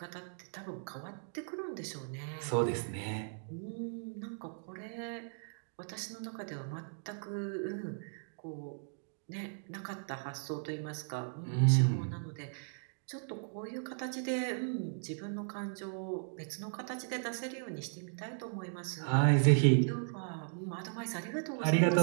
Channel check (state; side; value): silent; left; digital silence